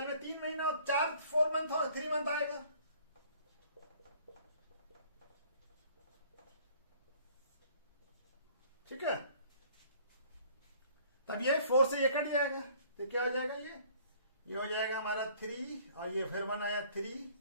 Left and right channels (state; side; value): inverted; both; correlation -0.56